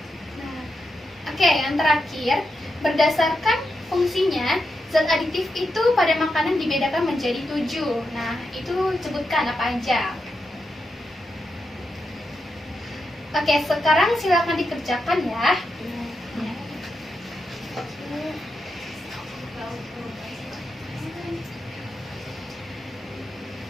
Nah, oke, yang terakhir, berdasarkan fungsinya, zat aditif itu pada makanan dibedakan menjadi 7. Nah, itu sebutkan apa aja. Oke, sekarang silakan dikerjakan ya.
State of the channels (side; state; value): both; normal; correlation 0.86